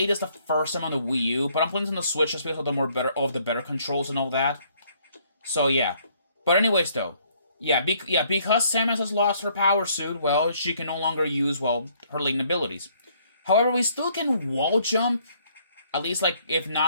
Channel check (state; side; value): inverted; both; correlation -0.65